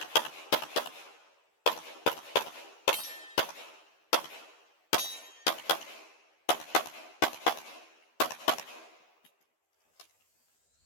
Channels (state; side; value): late; right; 12 ms